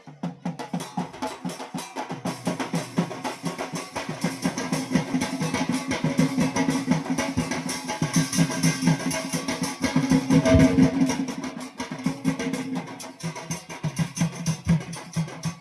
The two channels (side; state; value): both; identical; correlation 1.00